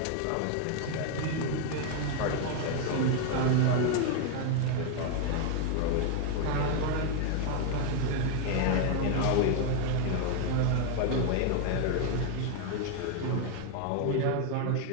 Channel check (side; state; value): both; different; correlation 0.01